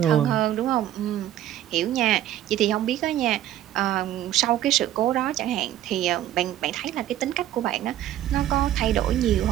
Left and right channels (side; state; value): left; quieter; 12.6 dB